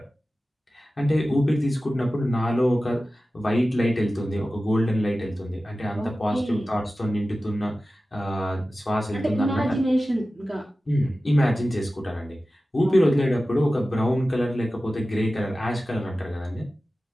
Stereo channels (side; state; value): both; normal; correlation 0.95